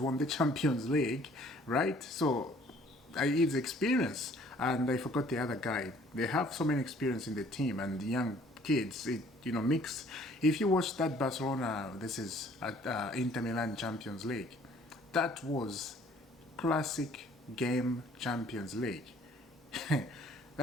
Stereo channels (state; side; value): normal; both; correlation 0.57